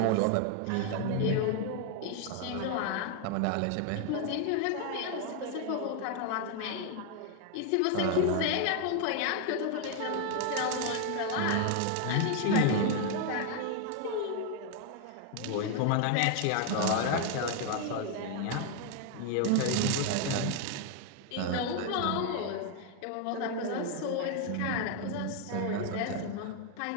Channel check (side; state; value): both; different; correlation 0.00